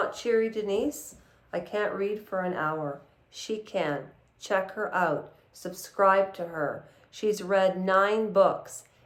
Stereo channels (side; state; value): both; identical; correlation 1.00